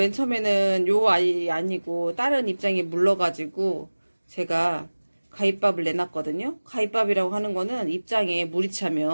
처음에는 요 아이 아니고 다른 입장이 물러가지고 제가 가입밥을 내놨거든요. 가입밥이라고 하는 거는 입장에 물이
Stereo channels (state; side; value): inverted; both; correlation -1.00